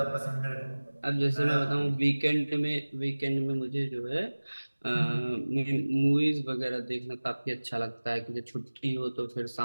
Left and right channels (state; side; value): inverted; both; correlation -1.00